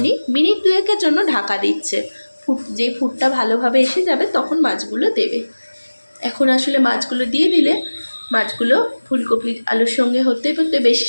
মিনিট 2-এর জন্য ঢাকা দিচ্ছে। যে ফুটটা ভালোভাবে এসে যাবে তখন মাছগুলো দেবে। এখন আসলে মাছগুলো দিয়ে দিলে মাছগুলো ফুলকপি আলুর সঙ্গে হতে হতে বেশি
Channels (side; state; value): both; inverted; correlation -1.00